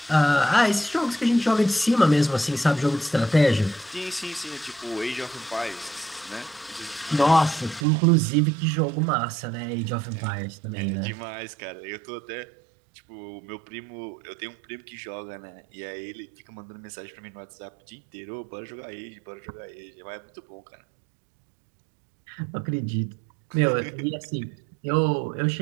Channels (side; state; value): left; drops out; at 7.9 s